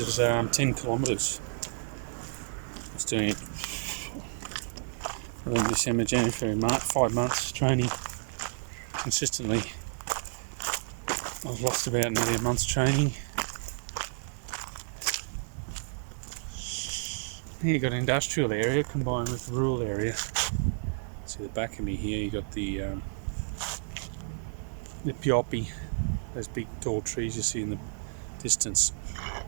10 kilometres. I was doing it November, December, January, February, March, 5 months training consistently. I was lost about nearly a month's training. Here you got an industrial area combined with rural area. See the back of me here, you got the pioppi, those big tall trees you see in the distance.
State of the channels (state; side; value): silent; left; digital silence